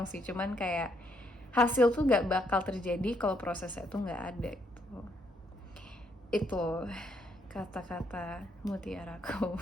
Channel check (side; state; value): both; normal; correlation 0.73